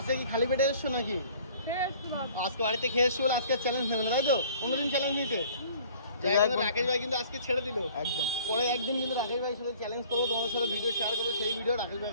কি খালি পেটে এসছো নাকি? খেয়ে এসছি বাবা। আজকে বাড়িতে খেয়ে এসছো বলে আজকে চ্যালেঞ্জ নেবে না, তাই তো? অন্যদিন চ্যালেঞ্জ নিতে যাই হোক, রাকেশ ভাই কিন্তু আজকে ছেড়ে দিল। একদম। পরে একদিন কিন্তু রাকেশ ভাইয়ের সাথে চ্যালেঞ্জ করবো, তোমার সাথে ভিডিও শেয়ার করবো। সেই ভিডিও রাকেশ ভাই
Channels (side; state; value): both; inverted; correlation -0.52